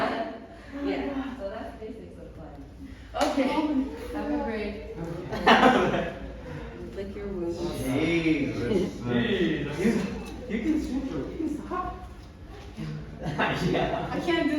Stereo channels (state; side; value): identical; both; correlation 1.00